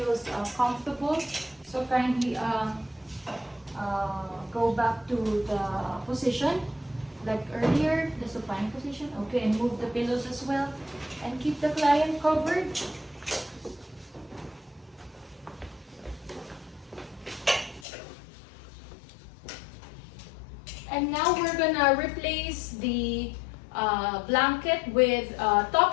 comfortable. So kindly go back to the position like earlier, the supine position. Okay, and move the pillows as well and keep the client covered. And now we're gonna replace the blanket with top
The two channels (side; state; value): right; drops out; at 17.9 s